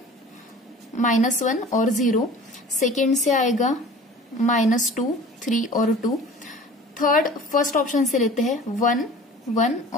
-1 और 0। सेकेंड से आएगा -2, 3 और 2। थर्ड फर्स्ट ऑप्शन से लेते हैं, 1, 1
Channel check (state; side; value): normal; both; correlation 0.43